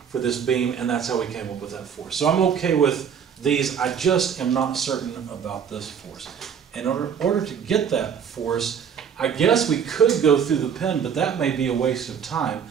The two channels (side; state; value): left; quieter; 7.6 dB